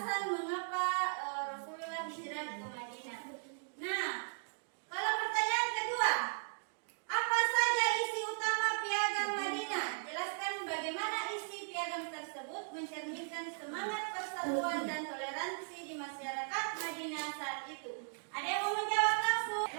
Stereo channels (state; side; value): silent; left; digital silence